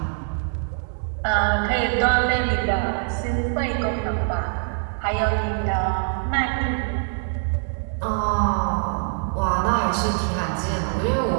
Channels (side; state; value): left; silent; digital silence